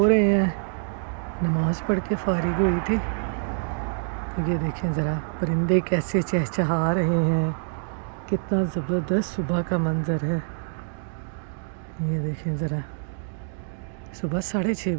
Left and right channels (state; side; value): silent; left; digital silence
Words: रहे हैं। नमाज़ पढ़ के फ़ारिग हुई थी। ये देखें ज़रा परिंदे कैसे चहचहा रहे हैं, कितना ज़बरदस्त सुबह का मंज़र है। ये देखें ज़रा, सुबह 6:30